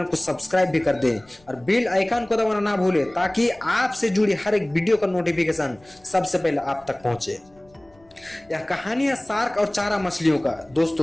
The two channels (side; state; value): left; noise; rumble, 30 dB below the sound